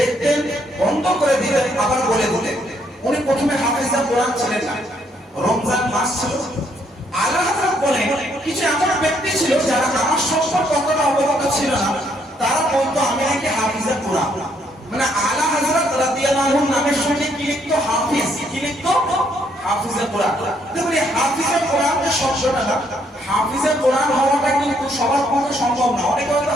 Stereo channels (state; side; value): normal; both; correlation 0.70